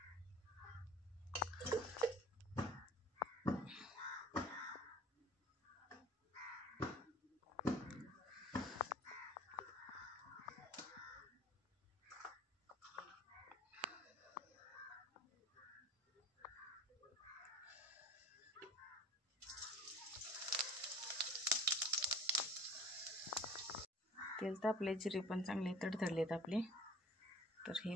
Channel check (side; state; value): both; normal; correlation 0.45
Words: तेल तापले, जिरे पण चांगले तडतडलेत आपले. तर हे